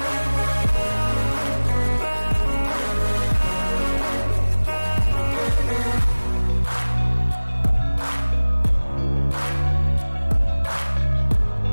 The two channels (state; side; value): inverted; both; correlation -1.00